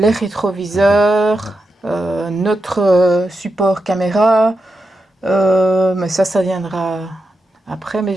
rétroviseurs, notre support caméra, mais ça viendra après, mais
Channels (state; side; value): normal; both; correlation 0.87